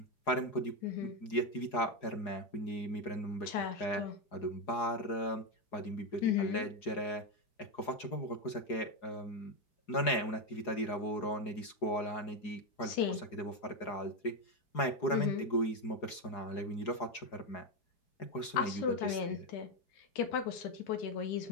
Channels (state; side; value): late; right; 4.8 ms